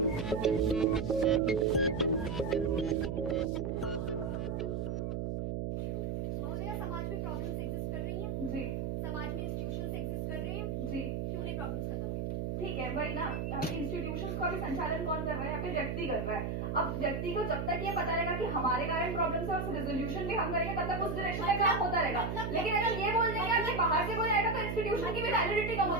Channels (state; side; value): noise; right; hum, 2 dB below the sound